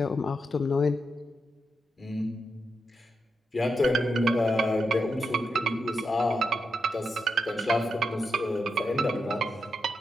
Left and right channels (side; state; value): both; normal; correlation 0.85